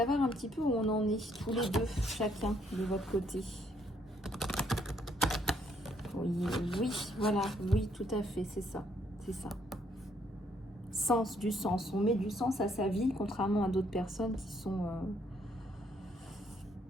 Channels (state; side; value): normal; both; correlation 0.70